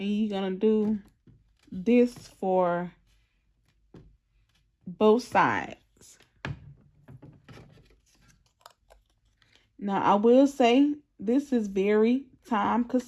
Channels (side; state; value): both; identical; correlation 1.00